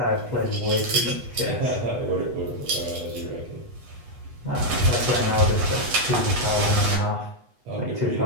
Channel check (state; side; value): late; left; 8.2 ms